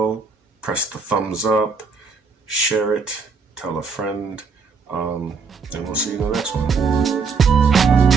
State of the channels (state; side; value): quieter; left; 5.0 dB